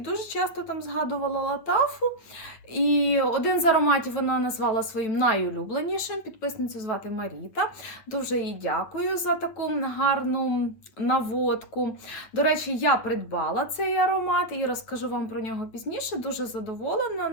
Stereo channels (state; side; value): late; right; 9.4 ms